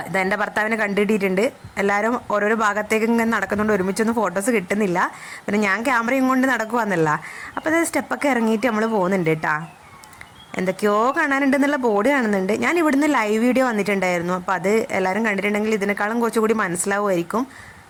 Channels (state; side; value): identical; both; correlation 1.00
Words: ഇതെൻ്റെ ഭർത്താവിനെ കണ്ടിട്ടിട്ടുണ്ട്. എല്ലാവരും ഓരോരോ ഭാഗത്തേക്ക് ഇങ്ങനെ നടക്കുന്നുണ്ട്, ഒരുമിച്ചൊന്നും ഫോട്ടോസ് കിട്ടുന്നില്ല. പിന്നെ ഞാൻ ക്യാമറയും കൊണ്ട് നടക്കുവാന്നല്ല. അപ്പോൾ ഇത് സ്റ്റെപ്പൊക്കെ ഇറങ്ങിയിട്ട് നമ്മൾ പോകുന്നുണ്ട് കേട്ടോ. എന്തൊക്കെയോ കാണാനുണ്ടെന്നുള്ള ബോർഡ് കാണുന്നുണ്ട്. ഞാൻ ഇവിടുന്ന് ലൈവ് വീഡിയോ വന്നിട്ടുണ്ടായിരുന്നു. അപ്പോൾ അത് എല്ലാവരും കണ്ടിട്ടുണ്ടെങ്കിൽ ഇതിനേക്കാളും കുറച്ചുകൂടി മനസ്സിലാവുമായിരിക്കും.